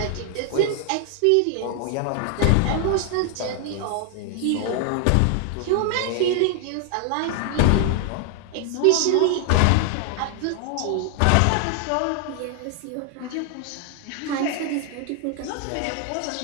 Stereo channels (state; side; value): different; both; correlation 0.00